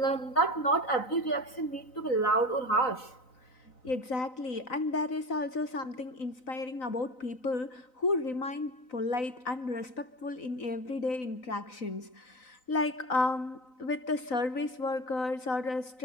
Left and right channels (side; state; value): right; late; 3.9 ms